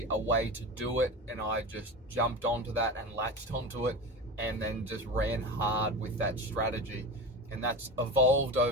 a way to do it, and I just jumped onto that and latched onto it, and then just ran hard with that strategy. And that's evolved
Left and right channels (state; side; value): normal; both; correlation 0.27